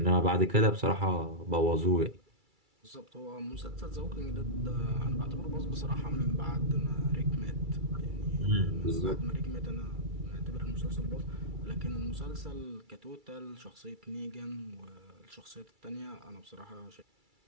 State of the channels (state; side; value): late; left; 2.3 ms